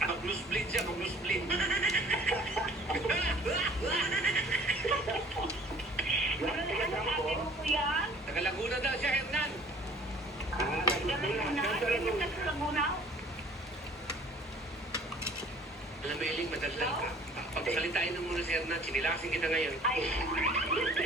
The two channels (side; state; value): both; normal; correlation 0.51